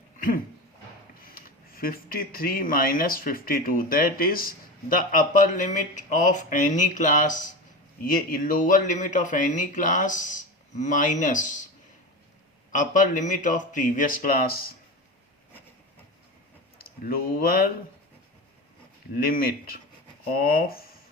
53 minus 52, that is the upper limit of any class. ये lower limit of any class minus upper limit of previous class. Lower limit of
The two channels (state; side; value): normal; both; correlation 0.25